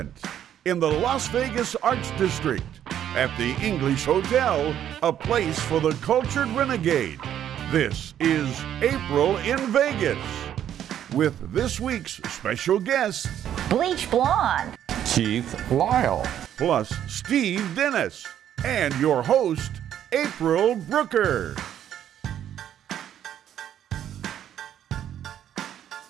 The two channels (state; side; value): quieter; left; 10.4 dB